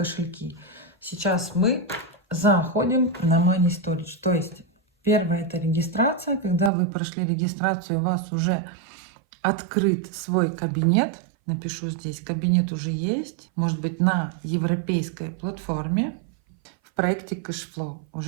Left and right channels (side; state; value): left; drops out; at 6.7 s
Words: Сейчас мы заходим на Money Storage. То есть первое — это регистрация. Когда вы прошли регистрацию, у вас уже открыт свой кабинет. Напишу здесь: кабинет уже есть. Может быть, на европейской платформе в проекте Cashflow